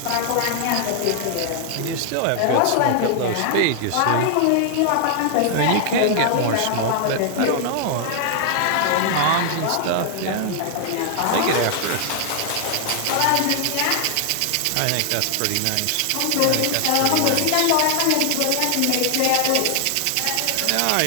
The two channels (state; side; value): different; both; correlation 0.00